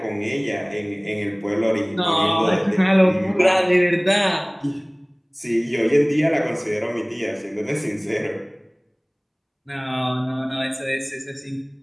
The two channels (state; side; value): identical; both; correlation 1.00